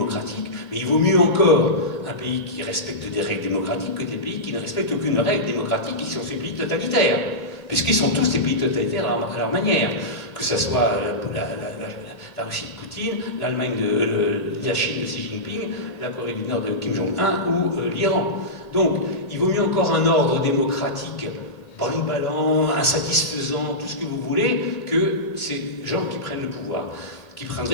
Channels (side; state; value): right; late; 1.9 ms